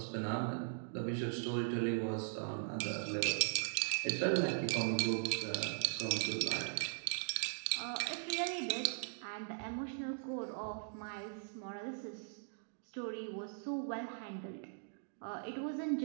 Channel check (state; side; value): silent; left; digital silence